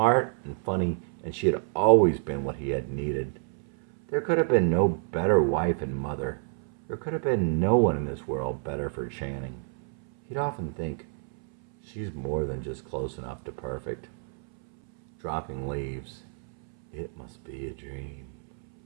and funny, and she had always been what he had needed. There could have been no better wife and mother. There could have been no one in this world better for Channing. He'd often think, she's more than just close enough to perfect. Dropping leaves. It must be a dream.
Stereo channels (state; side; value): silent; left; 59 dB below the other